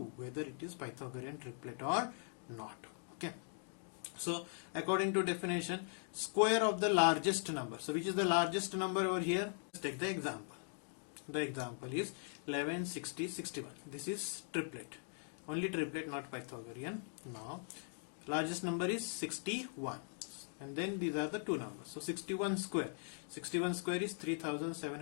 whether it is Pythagorean triplet or not. Okay. So according to definition, square of the largest number. So which is the largest number over here? Let's take the example. The example is 11, 60, 61. This is triplet. Only triplet, not Pythagorean. Now largest number is 61. And then these are the two numbers. So 61 square. 61 square is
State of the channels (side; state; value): right; silent; 51 dB below the other